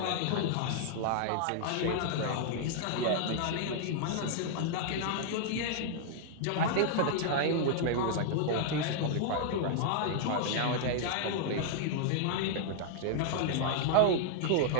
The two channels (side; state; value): both; different; correlation -0.01